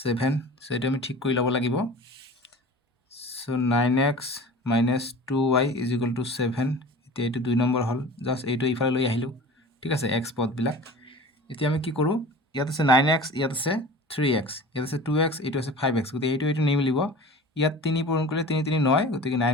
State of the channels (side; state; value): both; normal; correlation 0.39